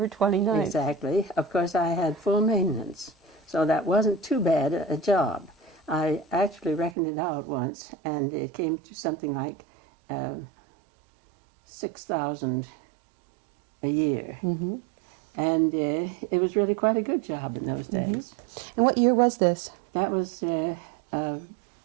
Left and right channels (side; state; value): left; drops out; at 7.0 s